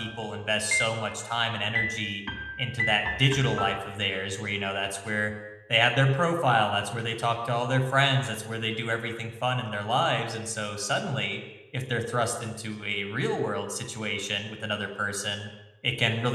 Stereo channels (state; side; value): identical; both; correlation 1.00